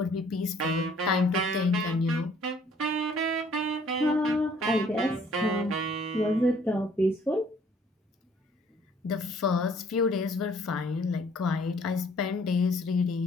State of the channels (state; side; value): normal; both; correlation 0.59